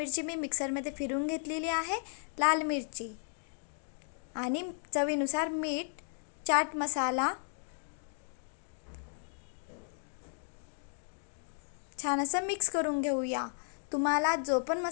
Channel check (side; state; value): right; silent; digital silence